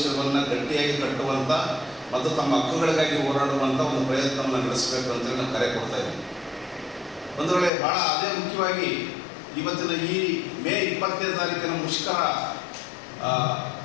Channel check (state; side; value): drops out; right; at 7.7 s